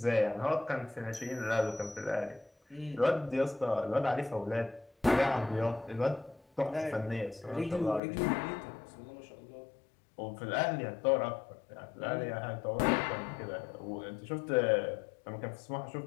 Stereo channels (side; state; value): right; drops out; at 8.0 s